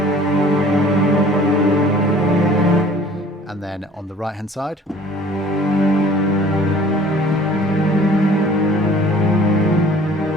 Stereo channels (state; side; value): normal; both; correlation 0.50